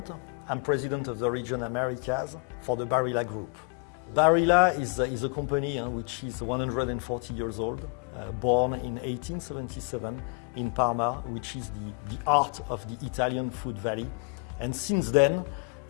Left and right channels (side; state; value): right; quieter; 36.5 dB